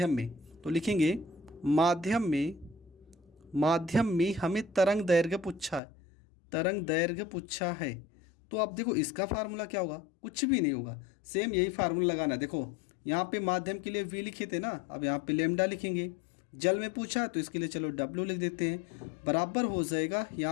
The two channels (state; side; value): drops out; right; at 5.8 s